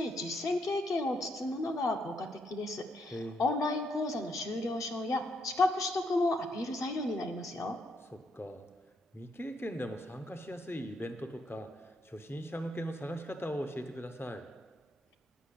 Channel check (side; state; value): both; normal; correlation 0.76